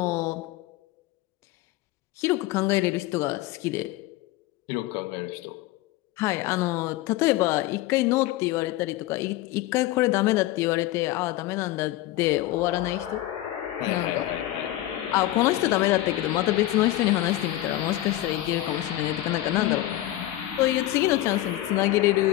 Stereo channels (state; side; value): quieter; right; 15.5 dB